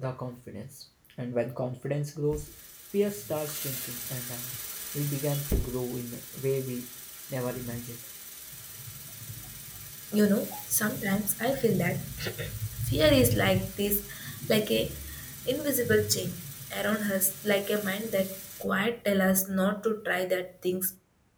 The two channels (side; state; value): both; identical; correlation 1.00